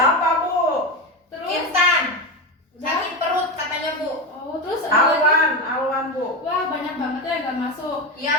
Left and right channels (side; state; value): both; normal; correlation 0.17